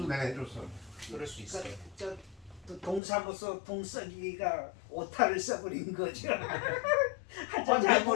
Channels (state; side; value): drops out; right; at 3.0 s